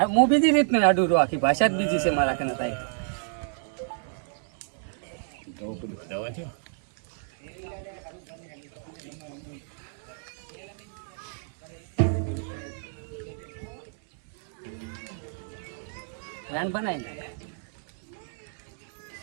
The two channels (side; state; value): left; silent; digital silence